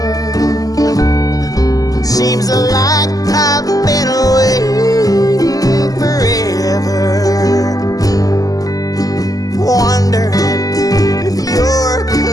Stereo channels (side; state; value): right; late; 0.17 ms